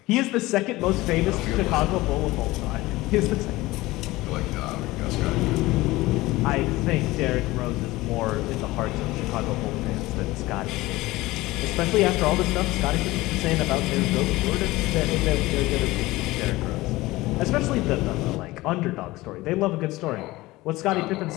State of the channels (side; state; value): right; quieter; 19.3 dB